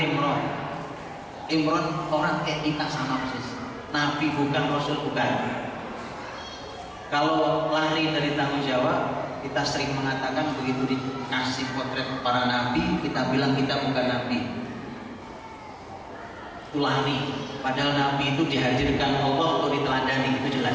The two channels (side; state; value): both; identical; correlation 1.00